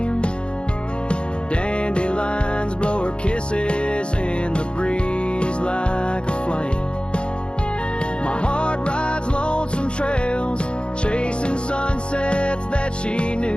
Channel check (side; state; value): right; late; 0.054 ms